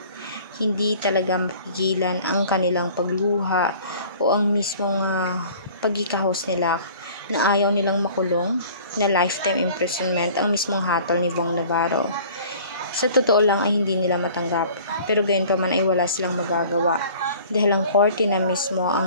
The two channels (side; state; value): both; inverted; correlation -0.48